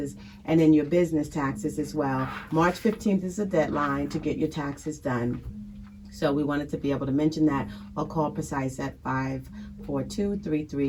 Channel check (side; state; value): both; identical; correlation 1.00